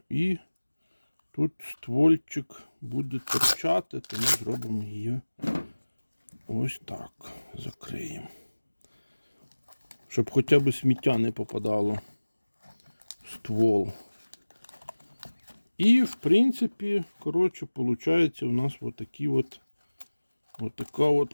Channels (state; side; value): inverted; both; correlation -1.00